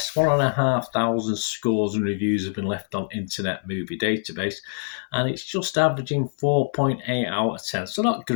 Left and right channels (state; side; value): silent; right; digital silence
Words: 1,500 scores and reviews have been left on Internet Movie Database, and it's just averaging 4.8 out of 10. So not